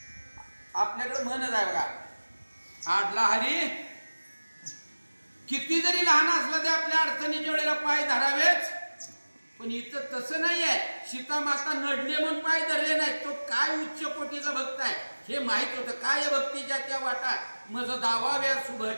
आपल्याकडे म्हणत आहे बघा, आडला हरी किती जरी लहान असलं ते आपल्या अडचणीच्या वेळेला पाय धरावेच. पण इथं तसं नाहीये. सीता माता नडले म्हणून पाय धरले नाहीत. तो काय उच्च कोटीचा भक्त आहे हे माहित होतं. काय भक्तीच्या त्या वाटात मज दावाव्या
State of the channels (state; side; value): inverted; both; correlation -1.00